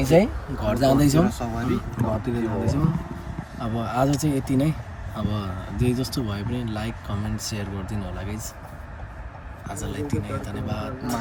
चाहिँ घर जाँदैछौँ, घरतिर जाँदैछौँ। अब आज चाहिँ यति नै। अब जे जस्तो भए पनि लाइक कमेन्ट सेयर गरिदिनु होला गाइज। आजलाई यति नै, धन्यवाद।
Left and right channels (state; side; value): identical; both; correlation 1.00